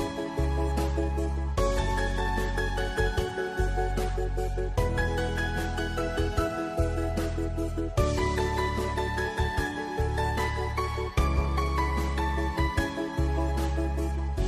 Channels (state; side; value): identical; both; correlation 1.00